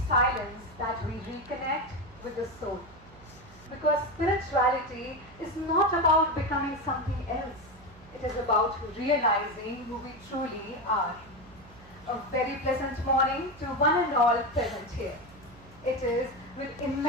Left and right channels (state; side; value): noise; right; hum, 22 dB below the sound